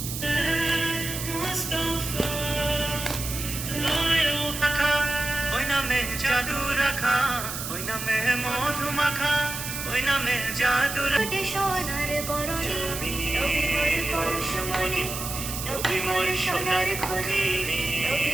মুস্তাফা লায়ো পাখা ওই নামে জাদু রাখা ওই নামে মধু মাখা ওই নামে জাদু কোটে সোনার বরণি নবী মোর পরশমণি নবী মোর সোনার খনি নবী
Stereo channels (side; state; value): right; noise; hiss, 6 dB below the sound